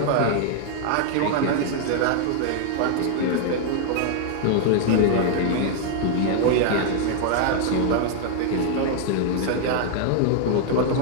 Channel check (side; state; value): both; different; correlation 0.00